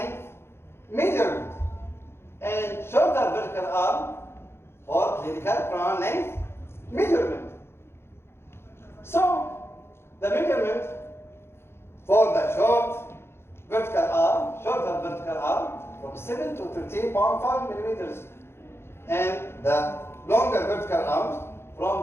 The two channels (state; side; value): late; right; 0.12 ms